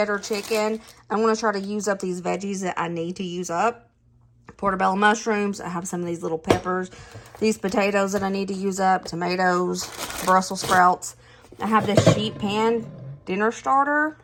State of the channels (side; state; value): both; identical; correlation 1.00